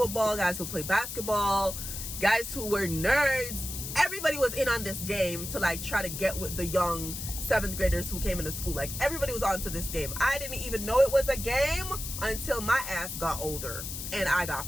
guys who play basketball, guys who were nerds. Everybody was in on this game to like try to get with the young 7th graders who came into school. Like, everybody was onto this game. I didn't even know it was a game until my ass got older and I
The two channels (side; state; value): left; noise; hiss, 7 dB below the sound